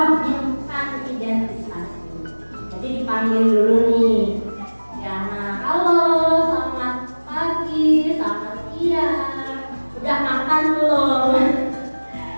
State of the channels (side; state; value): both; inverted; correlation -1.00